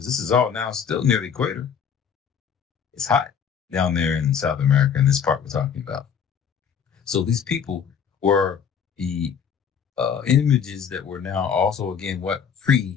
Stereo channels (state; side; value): quieter; right; 7.4 dB